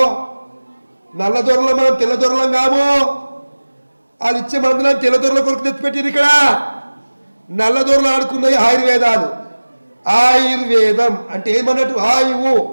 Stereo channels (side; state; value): both; inverted; correlation -1.00